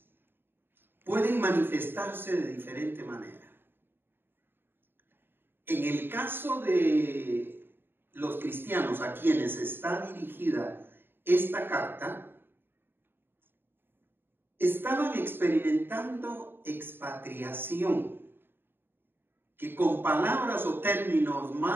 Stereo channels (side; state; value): left; late; 0.10 ms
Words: pueden manifestarse de diferente manera. En el caso de los cristianos a quienes está dirigida esta carta, estaban experimentando expatriación, que con palabras o términos